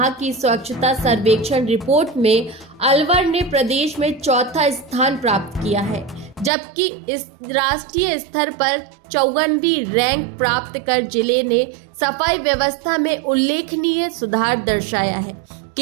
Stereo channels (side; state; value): left; drops out; at 6.5 s